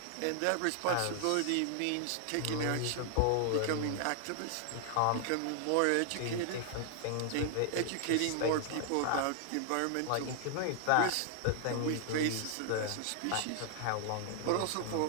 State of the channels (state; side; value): different; both; correlation 0.00